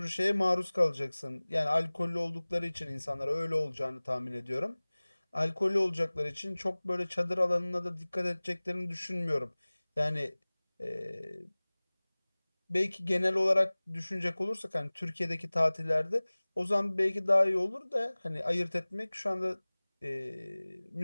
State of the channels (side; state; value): both; inverted; correlation -1.00